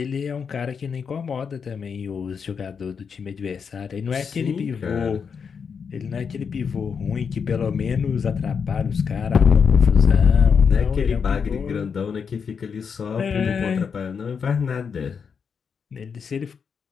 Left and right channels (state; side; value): quieter; right; 6.3 dB